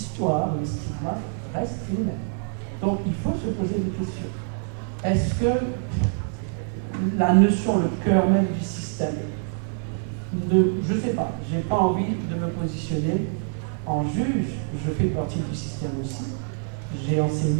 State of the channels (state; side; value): silent; left; digital silence